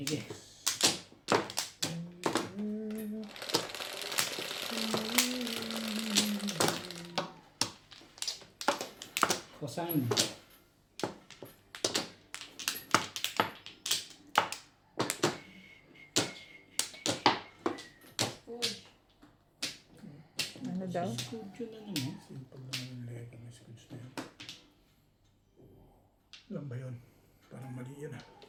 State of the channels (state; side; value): identical; both; correlation 1.00